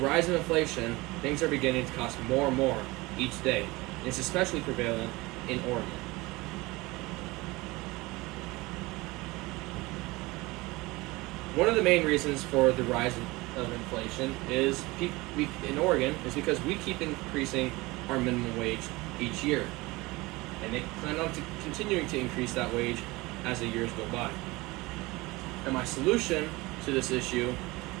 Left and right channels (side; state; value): left; quieter; 22.1 dB